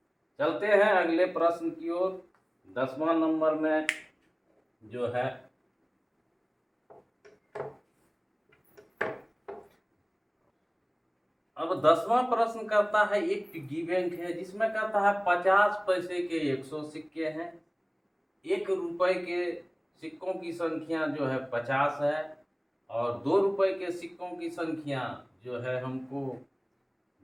चलते हैं अगले प्रश्न की ओर। 10वां नंबर में जो है अब 10वां प्रश्न करता है, एक पिग्गी बैंक है जिसमें कहता है 50 पैसे के 100 सिक्के हैं, 1 रुपए के सिक्कों की संख्या जो है 50 है, और 2 रुपए के सिक्कों की संख्या जो है हमको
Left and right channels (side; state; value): both; identical; correlation 1.00